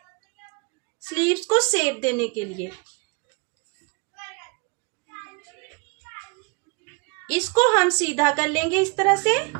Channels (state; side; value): quieter; left; 31.8 dB